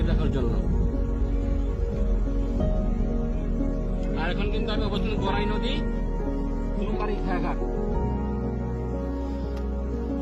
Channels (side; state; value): both; identical; correlation 1.00